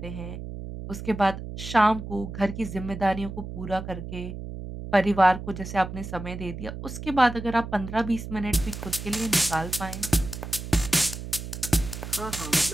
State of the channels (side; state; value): right; noise; hum, 9 dB below the sound